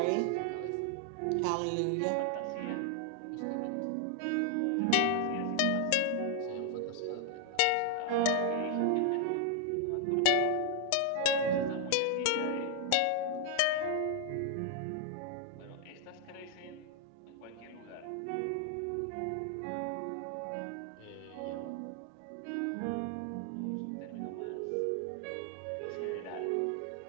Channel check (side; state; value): both; different; correlation 0.00